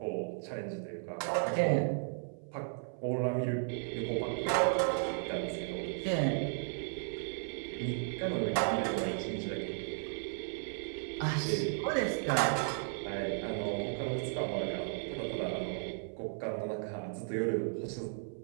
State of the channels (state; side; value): silent; left; 54 dB below the other